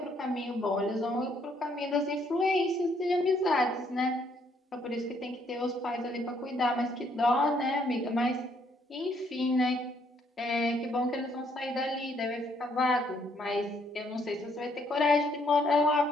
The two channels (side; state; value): both; normal; correlation 0.69